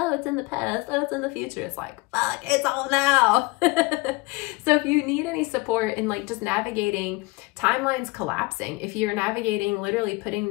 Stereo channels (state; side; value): quieter; right; 24.2 dB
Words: it's in the past, oh, it's in the future. It's like, fuck, it's all now. So if you need any support in like just navigating timelines collapsing, if you're navigating literally putting